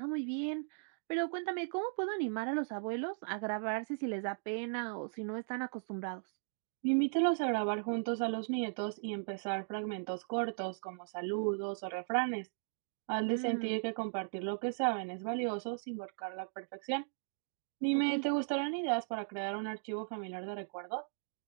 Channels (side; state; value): left; silent; digital silence